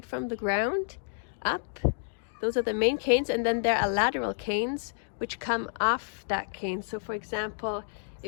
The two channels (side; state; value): right; silent; digital silence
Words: from the ground up. Those are the main canes, and then there are lateral canes which come off that cane. So for example,